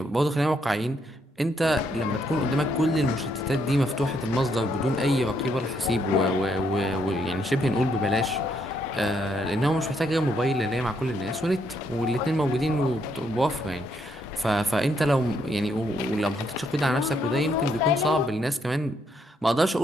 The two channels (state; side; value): normal; both; correlation 0.74